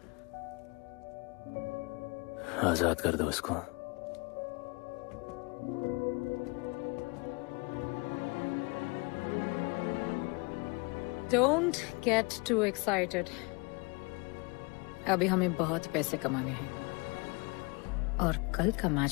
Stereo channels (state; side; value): quieter; right; 29.1 dB